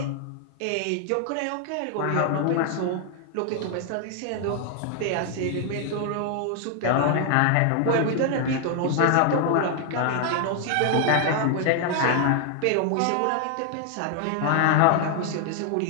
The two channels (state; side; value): different; both; correlation 0.00